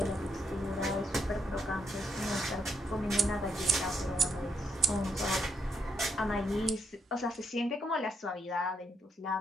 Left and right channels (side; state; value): both; normal; correlation 0.77